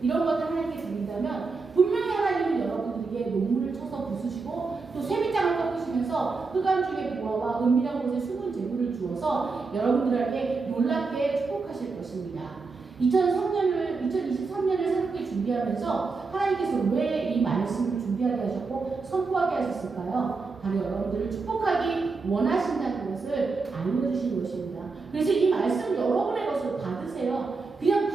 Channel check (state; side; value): quieter; left; 4.3 dB